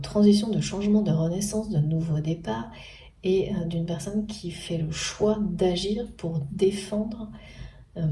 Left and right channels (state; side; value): identical; both; correlation 1.00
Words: de changement, de renaissance, de nouveau départ, et d'une personne qui fait le choix d'agir pour défendre euh,